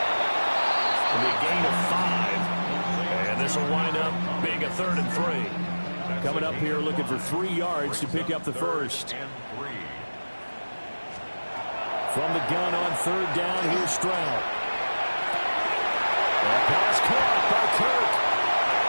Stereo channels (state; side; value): inverted; both; correlation -1.00